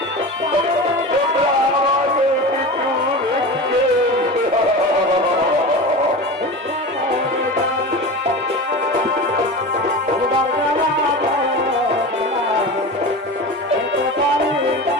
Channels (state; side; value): normal; both; correlation 0.29